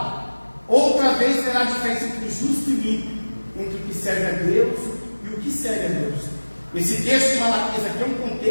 outra vez terá diferença entre o justo e o ímpio, entre o que serve a Deus e o que serve a Deus. Esse texto de Malaquias aqui é um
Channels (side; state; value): both; inverted; correlation -1.00